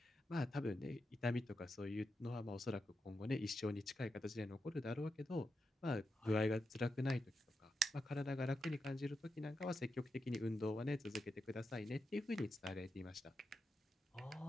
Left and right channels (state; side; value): normal; both; correlation 0.87